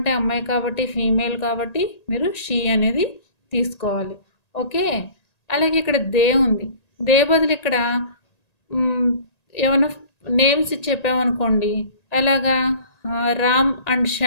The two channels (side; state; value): right; late; 1.9 ms